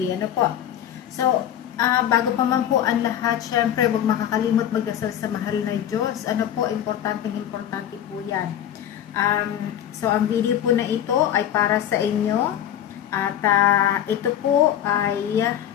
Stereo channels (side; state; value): right; quieter; 10.6 dB